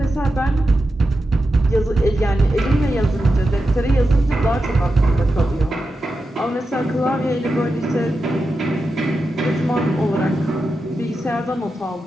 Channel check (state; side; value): normal; both; correlation 0.90